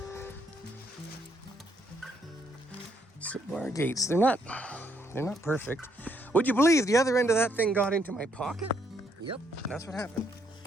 So our gates, they're not perfect. Would you believe the other end of that thing got into my pocket? Yep, that's what happened.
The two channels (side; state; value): both; normal; correlation 0.72